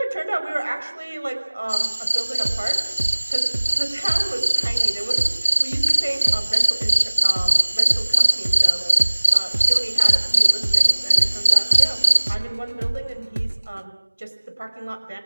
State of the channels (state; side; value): inverted; both; correlation -1.00